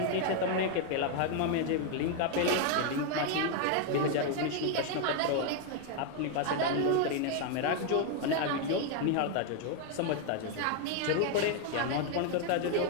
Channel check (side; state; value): both; different; correlation 0.01